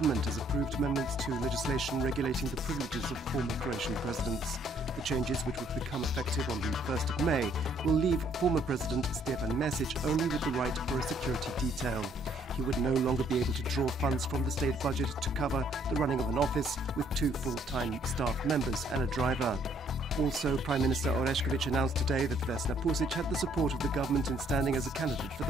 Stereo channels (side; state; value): both; normal; correlation 0.65